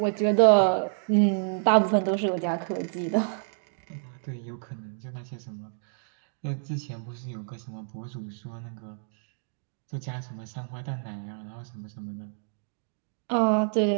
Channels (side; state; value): left; silent; digital silence